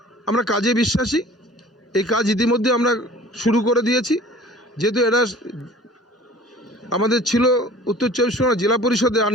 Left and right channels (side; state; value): both; normal; correlation 0.46